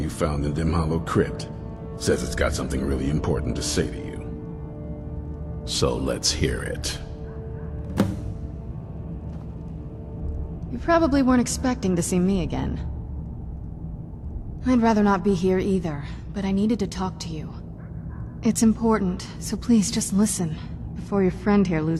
found in Dim Hollow Crypt. Says it's got something really important to say to you. So let's hear it. You probably weren't expecting to see me again. I'd rather not be here either, but I needed to talk to you. It's important, so please just listen, before your friend here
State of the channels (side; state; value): both; identical; correlation 1.00